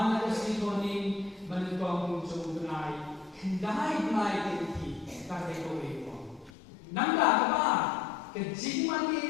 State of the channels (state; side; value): drops out; right; at 6.5 s